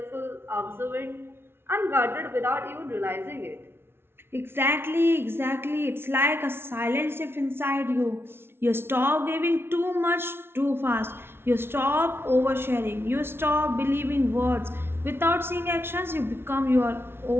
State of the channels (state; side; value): late; left; 0.12 ms